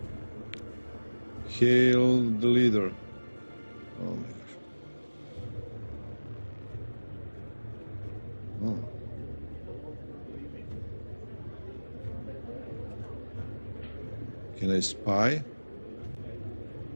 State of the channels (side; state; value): both; inverted; correlation -1.00